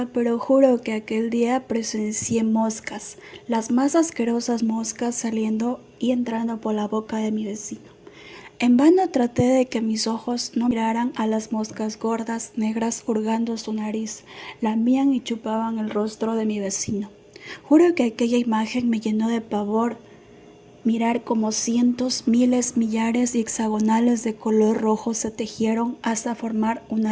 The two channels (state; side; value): identical; both; correlation 1.00